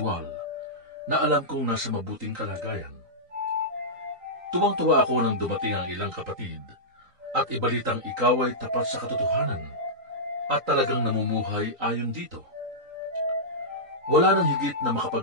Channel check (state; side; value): late; left; 3.9 ms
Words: na alam kong nasa mabuting kalagayan. Tuwang-tuwa ako nang dumating ang ilang kapatid at ibalitang ikaw ay tapat sa katotohanan at talagang namumuhay ayon dito. Wala nang higit na